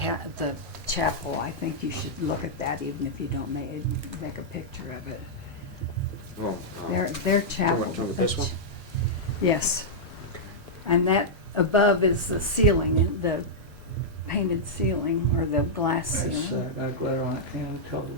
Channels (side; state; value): both; normal; correlation -0.08